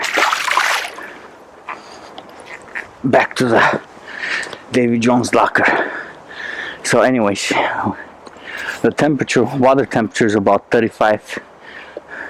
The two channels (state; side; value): identical; both; correlation 1.00